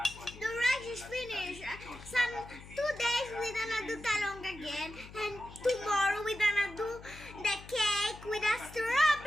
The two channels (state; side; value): noise; left; hum, 17 dB below the sound